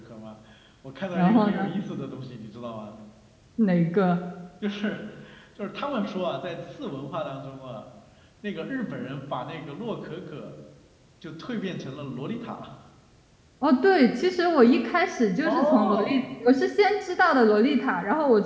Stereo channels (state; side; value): identical; both; correlation 1.00